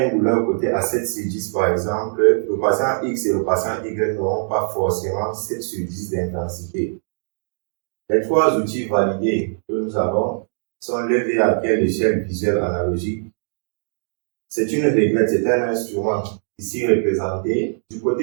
une douleur côté à 7 sur 10 par exemple, le patient X et le patient Y n'auront pas forcément 7 sur 10 d'intensité. Les trois outils validés que nous avons sont l'EVA, qui est l'échelle visuelle analogique. C'est une réglette, c'est un instrument ici représenté. Du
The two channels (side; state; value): left; silent; digital silence